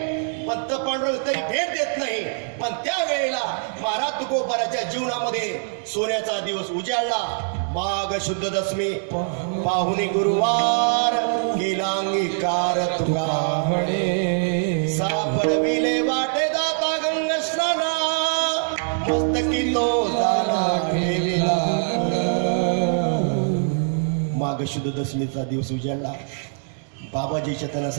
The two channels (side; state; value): left; silent; 63 dB below the other